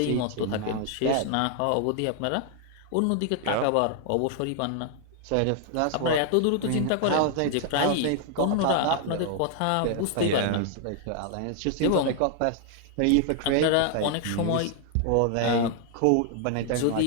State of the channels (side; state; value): both; different; correlation 0.00